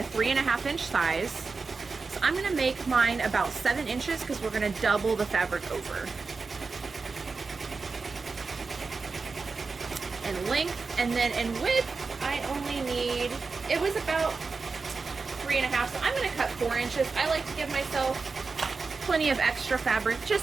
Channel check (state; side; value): quieter; left; 4.4 dB